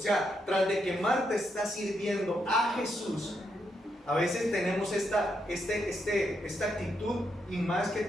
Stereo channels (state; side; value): normal; both; correlation 0.80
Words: tras de que Marta está sirviendo a Jesús, a veces tenemos esta actitud, y más que